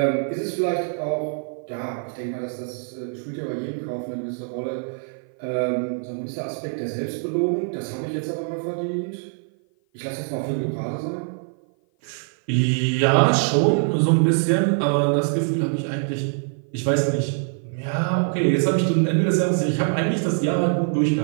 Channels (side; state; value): left; silent; 55 dB below the other